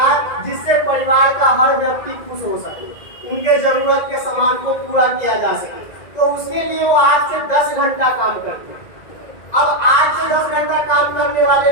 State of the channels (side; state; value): right; late; 2.0 ms